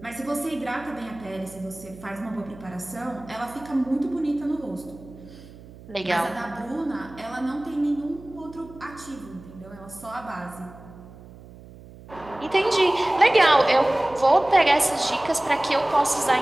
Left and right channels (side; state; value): right; noise; hum, 19 dB below the sound